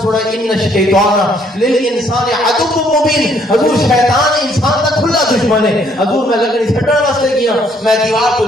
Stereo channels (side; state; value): both; normal; correlation 0.66